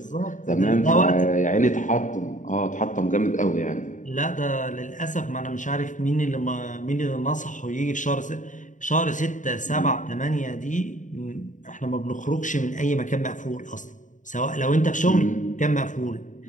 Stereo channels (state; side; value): late; right; 0.37 ms